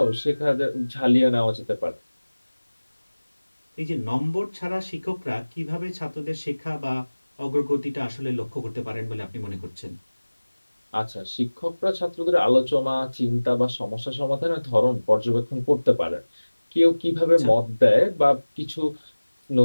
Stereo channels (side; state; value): both; inverted; correlation -1.00